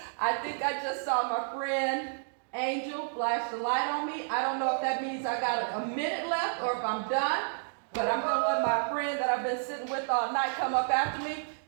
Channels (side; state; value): left; silent; digital silence